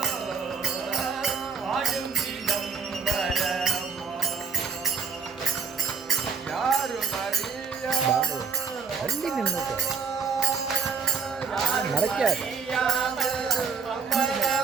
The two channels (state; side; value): quieter; left; 5.6 dB